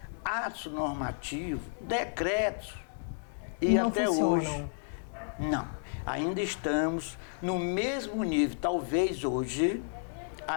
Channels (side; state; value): right; silent; 56 dB below the other